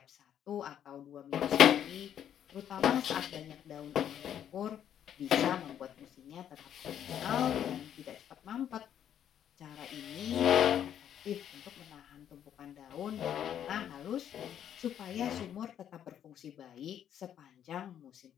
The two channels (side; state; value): right; quieter; 9.8 dB